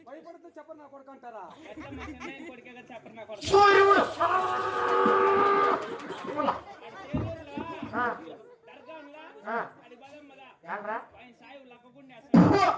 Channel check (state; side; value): identical; both; correlation 1.00